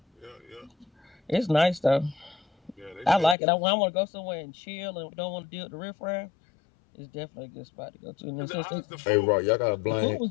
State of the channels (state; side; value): drops out; right; at 3.4 s